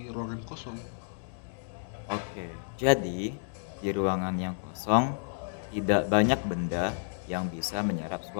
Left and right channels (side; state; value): right; silent; digital silence